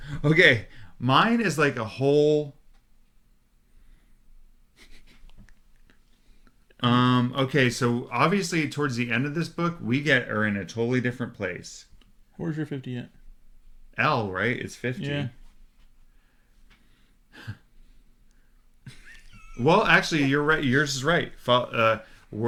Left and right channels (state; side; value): identical; both; correlation 1.00